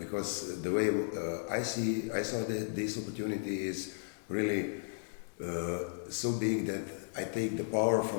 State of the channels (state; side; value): silent; right; digital silence